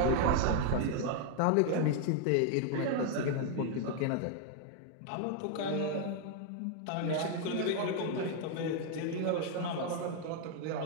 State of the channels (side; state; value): both; different; correlation 0.00